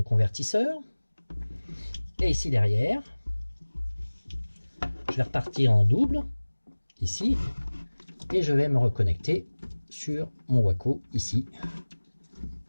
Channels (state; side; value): inverted; both; correlation -1.00